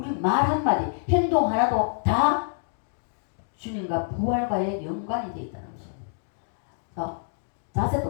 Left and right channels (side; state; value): right; silent; digital silence